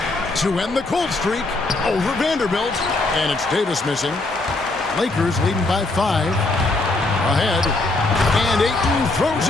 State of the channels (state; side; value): quieter; right; 3.1 dB